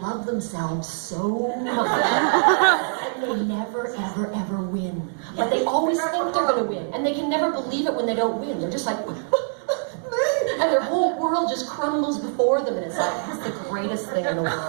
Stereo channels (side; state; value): left; silent; digital silence